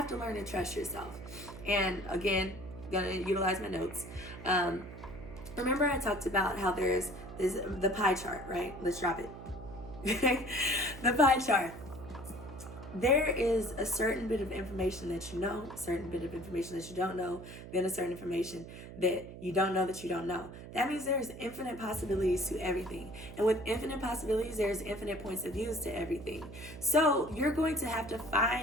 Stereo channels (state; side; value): noise; right; hum, 13 dB below the sound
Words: to learn to trust yourself. And again, gonna utilize my notes. Remember I talked about how there's the pie chart, right? Let's drop it. The pie chart. there is a certain bit of information that you know, a certain bit of information that you don't know, then a certain information that you don't know that you don't know. That means there's infinite possibilities to everything. And with infinite possibilities, there's infinite points of views to everything. So you're going to have to